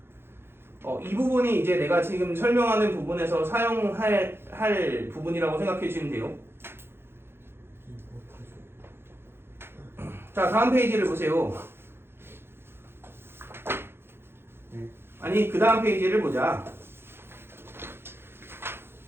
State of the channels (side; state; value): left; late; 0.11 ms